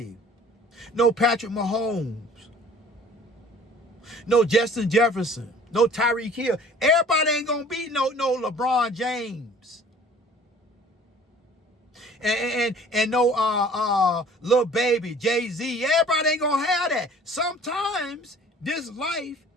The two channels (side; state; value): both; normal; correlation 0.50